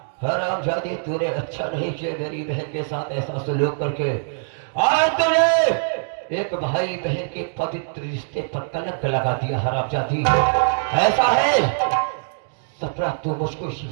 हरामजादी, तूने अच्छा नहीं किया मेरी बहन के साथ ऐसा सलूक करके। आज तूने एक भाई बहन के पवित्र रिश्ते पर कलंक लगा दिया हरामजादी। ऐसा है सपना, तू मुझको इसी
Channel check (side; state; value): left; silent; digital silence